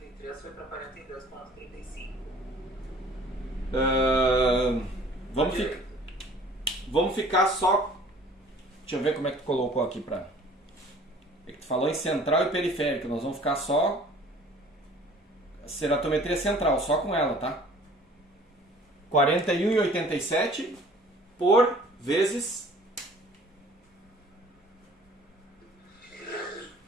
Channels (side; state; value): both; normal; correlation 0.51